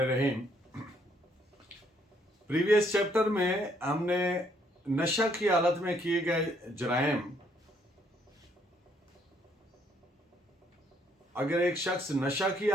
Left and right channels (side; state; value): both; normal; correlation 0.68